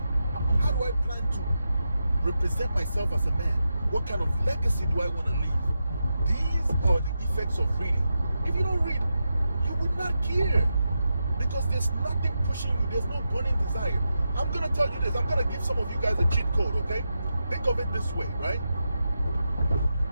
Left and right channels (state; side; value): inverted; both; correlation -0.88